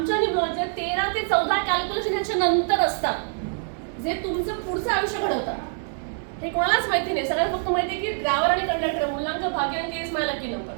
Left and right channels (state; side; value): silent; left; 62 dB below the other